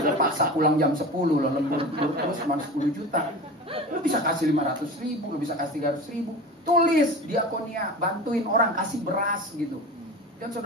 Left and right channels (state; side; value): normal; both; correlation 0.33